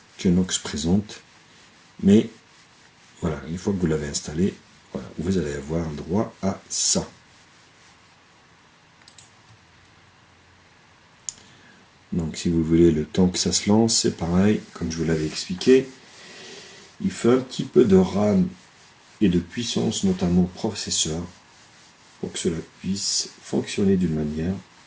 que Nox présente. Mais, voilà, une fois que vous l'avez installé, voilà, vous allez avoir droit à ça. Donc si vous voulez, le temps que ça se lance, c'est pareil, comme je vous l'avais expliqué. Il faut un petit peu de RAM et de puissance, notamment processeur, pour que cela puisse fonctionner d'une manière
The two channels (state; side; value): identical; both; correlation 1.00